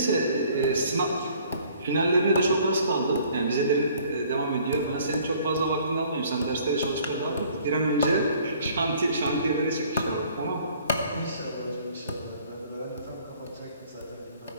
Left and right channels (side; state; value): both; inverted; correlation -0.57